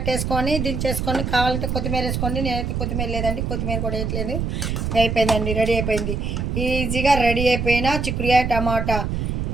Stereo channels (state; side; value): noise; right; rumble, 1 dB below the sound